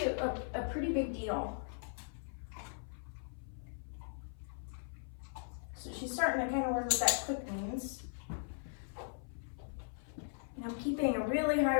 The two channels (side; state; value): right; silent; 52 dB below the other